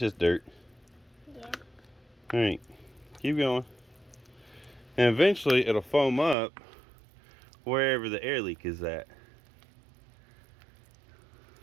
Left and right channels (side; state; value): left; drops out; at 6.4 s